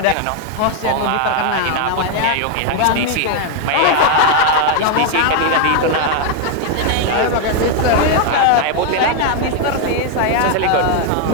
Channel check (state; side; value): different; both; correlation 0.00